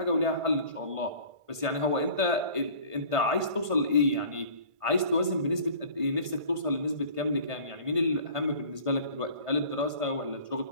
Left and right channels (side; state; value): left; late; 1.5 ms